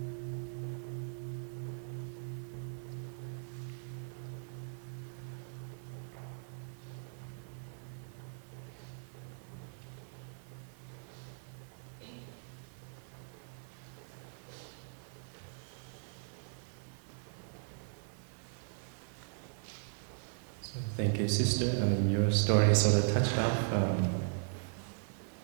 So thank you, sister. Your story sort of touched off a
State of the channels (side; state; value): left; silent; 52 dB below the other